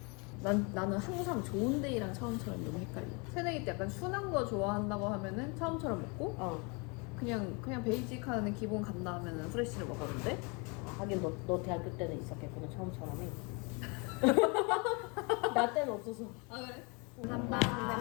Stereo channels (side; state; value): right; quieter; 31.2 dB